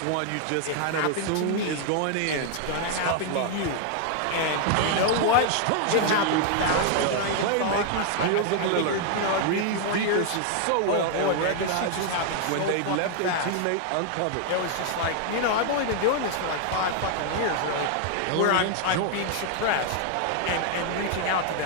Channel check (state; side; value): different; both; correlation 0.00